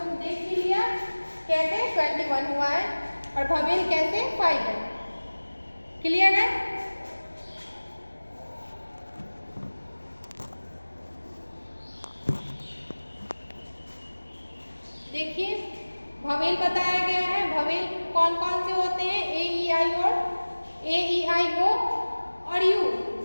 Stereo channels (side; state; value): both; inverted; correlation -1.00